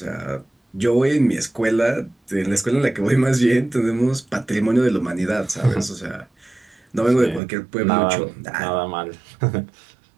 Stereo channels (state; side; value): drops out; left; at 7.4 s